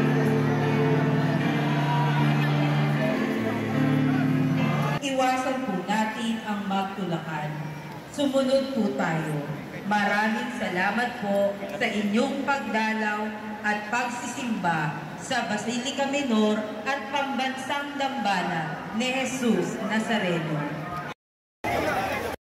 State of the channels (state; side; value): identical; both; correlation 1.00